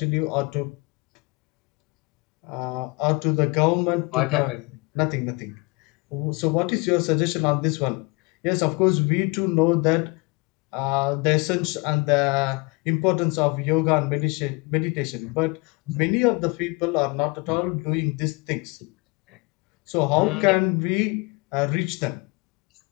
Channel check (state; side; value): quieter; right; 26.7 dB